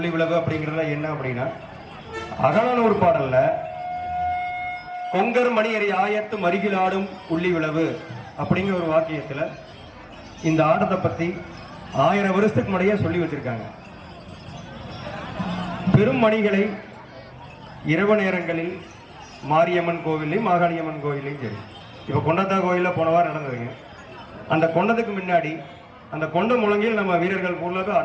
விளவு அப்படிங்கிறதுல என்ன அப்படின்னா, அகலானூர் பாடல்ல கொங்கர் மணியரை ஆயத்து மருகில் ஆடும் உள்ளி விளவு அப்படிங்கிற ஒரு வாக்கியத்துல இந்த ஆட்டத்தை பத்தி 1000 வருஷத்துக்கு முறையே சொல்லி வச்சிருக்காங்க. பெரும் மணிகளை இரவு நேரங்களில் மாரியம்மன் கோவிலையும் மாகாளியம்மன் கோவிலையும் சரி, இப்ப கொண்டத்தா கோயில போன வாரம் நடந்ததுங்க. அந்த கொண்டதுக்கு முன்னாடி அந்த கொண்ட முழங்கில் நம்ம வீரர்கள் பொருளாக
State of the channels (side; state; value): both; identical; correlation 1.00